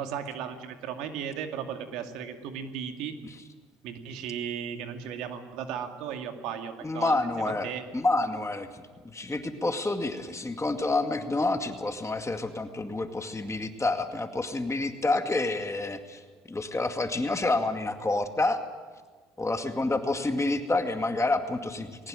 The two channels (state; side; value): normal; both; correlation 0.75